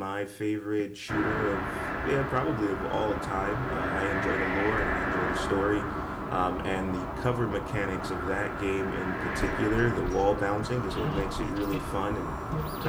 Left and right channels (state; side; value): identical; both; correlation 1.00